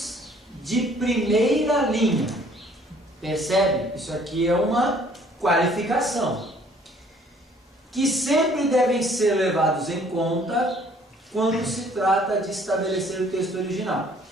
de primeira linha. Percebe? Isso aqui é uma qualificação. Que sempre devem ser levados em conta quando se trata de estabelecer o texto original.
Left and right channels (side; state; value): both; normal; correlation 0.58